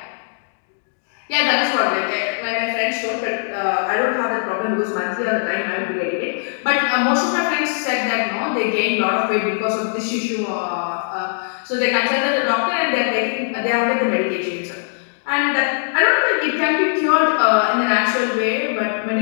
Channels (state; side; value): silent; right; digital silence